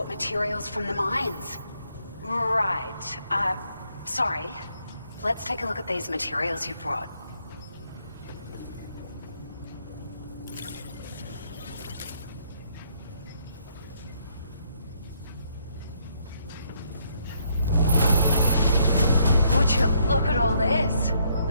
materials from the mines. Right. Sorry. Let's take a look at these materials you brought. Would you look at all this?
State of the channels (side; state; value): both; inverted; correlation -0.72